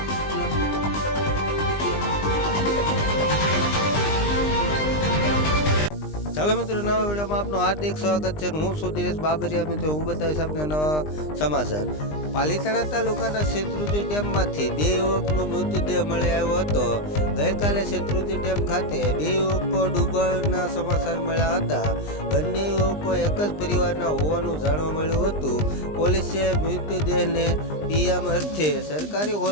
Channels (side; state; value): right; late; 20 ms